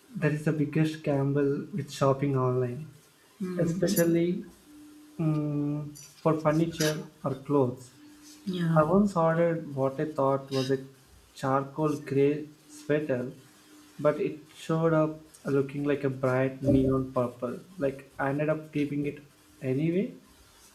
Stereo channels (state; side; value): identical; both; correlation 1.00